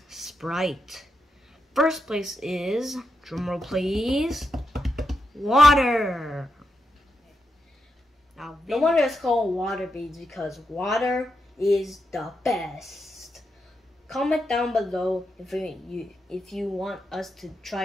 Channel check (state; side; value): normal; both; correlation 0.85